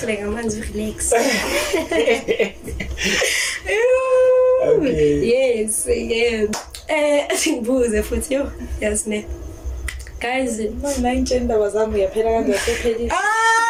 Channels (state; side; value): identical; both; correlation 1.00